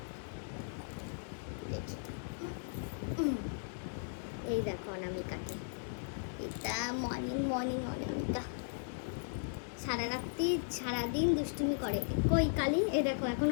এই দেখো অনামিকাকে, এটা মর্নিং মর্নিং অনামিকা। সারাদিন দুষ্টুমি করে। কই কালি? এ দেখো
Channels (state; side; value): silent; right; digital silence